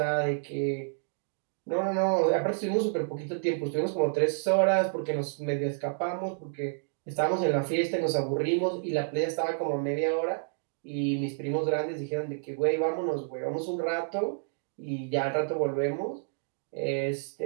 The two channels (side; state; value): left; silent; digital silence